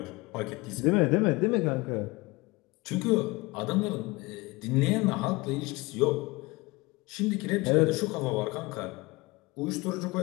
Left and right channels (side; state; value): right; quieter; 23.3 dB